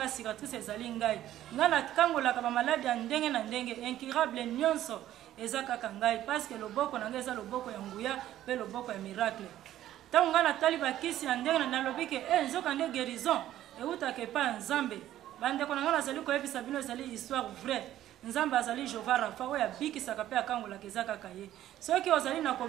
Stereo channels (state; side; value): quieter; left; 12.9 dB